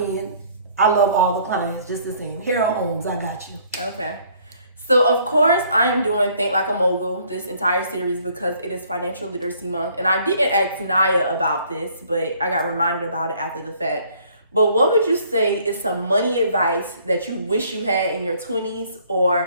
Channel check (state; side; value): inverted; both; correlation -0.61